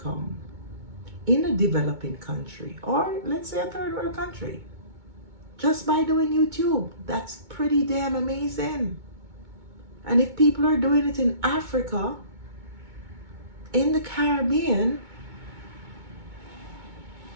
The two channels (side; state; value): left; late; 2.2 ms